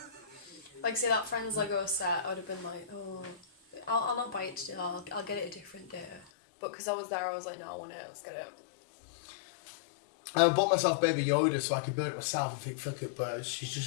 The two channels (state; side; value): drops out; right; at 6.2 s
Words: Like, say that friend's Lego set, I would have been like, oh, I'll not buy it today, I'll get it a different day. But because I was there, I was like, no, I want it, let's get it. I bought myself Baby Yoda so I could build it myself and think, fuck it, but she's